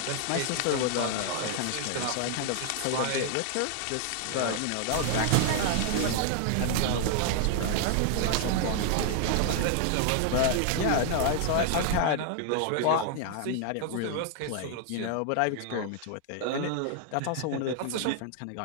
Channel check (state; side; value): different; both; correlation 0.00